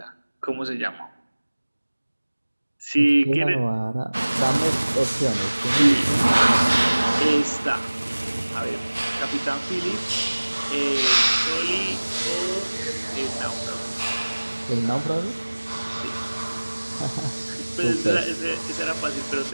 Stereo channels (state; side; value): inverted; both; correlation -1.00